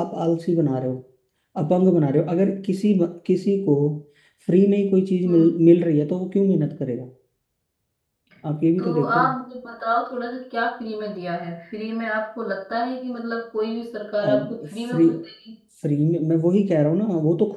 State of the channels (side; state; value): both; identical; correlation 1.00